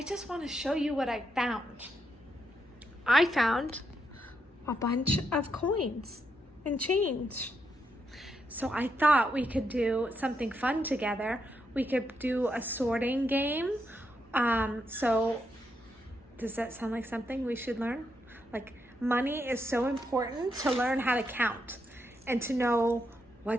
just want to show you what I found. I found a bunch of coins and change. So I thought we could do something fun together. We could do a sorting game. So does that sound like something we should learn? Like, money is so important to learn how to count and to know,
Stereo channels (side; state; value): both; normal; correlation 0.81